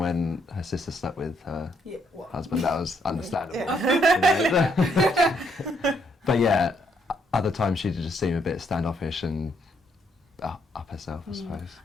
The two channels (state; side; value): normal; both; correlation 0.73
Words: her sister slept with her husband, that was understandable. But yeah, other times she just seemed a bit standoffish and up herself, I suppose.